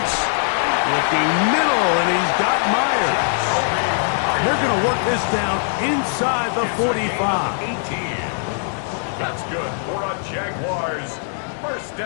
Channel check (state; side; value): silent; right; digital silence